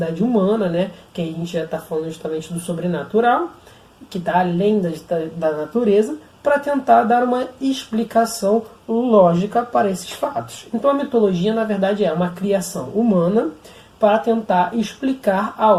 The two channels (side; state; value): both; identical; correlation 1.00